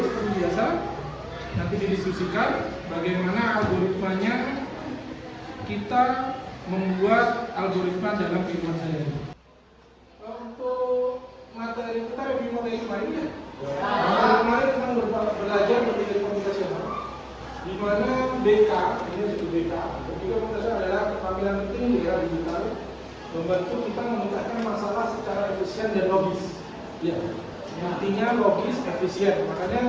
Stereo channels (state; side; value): identical; both; correlation 1.00